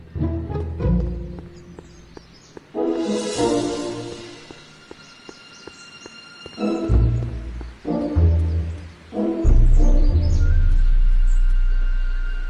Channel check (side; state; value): both; identical; correlation 1.00